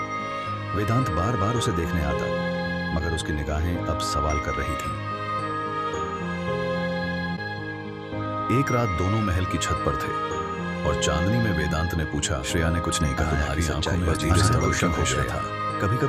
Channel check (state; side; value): identical; both; correlation 1.00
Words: वेदांत बार बार उसे देखने आता, मगर उसकी निगाहें अब सवाल कर रही थी। एक रात दोनों महल की छत पर थे और चांदनी में वेदांत ने पूछा, श्रेया ने कुछ नहीं कहा। तुम्हारी आंखों में धीरे से रोशन हो गया था। कभी